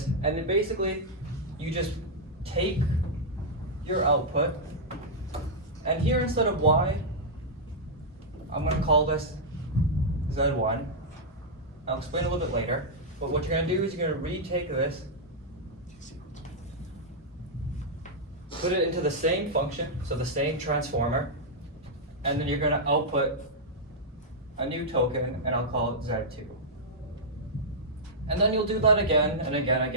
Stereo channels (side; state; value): both; normal; correlation -0.07